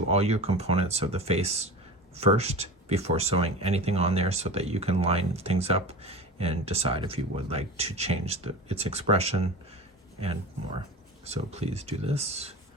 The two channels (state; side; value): normal; both; correlation 0.32